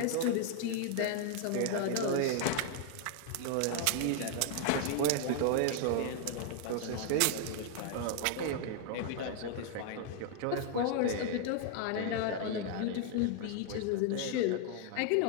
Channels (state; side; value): different; both; correlation 0.00